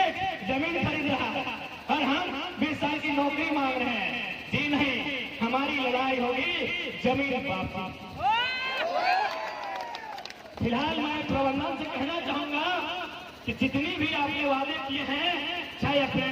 जमीन खरीद रहा है और हम 20 साल की नौकरी मांग रहे हैं। जी नहीं, हमारी लड़ाई होगी जमीन वापसी। फिलहाल मैं प्रबंधन से कहना चाहूंगा कि जितनी भी आपने वादे किए हैं, चाहे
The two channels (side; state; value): both; identical; correlation 1.00